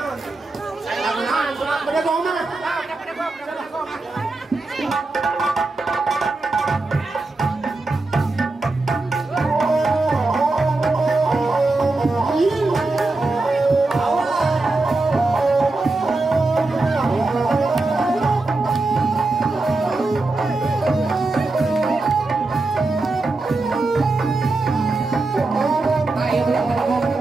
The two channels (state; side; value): quieter; left; 3.3 dB